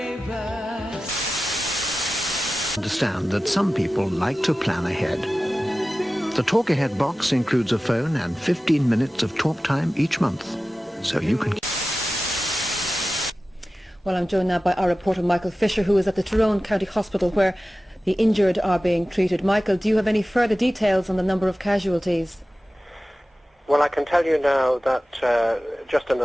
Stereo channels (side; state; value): both; normal; correlation 0.96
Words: Understand that some people like to plan ahead. The Talk Ahead box includes a phone and 15 minutes of talk time each month, so you can... Well, I'm joined now by our reporter Michael Fisher, who is at the Tyrone County Hospital where the injured are being treated. Michael, do you have any further details on the number of casualties? Well, I can tell you now that just in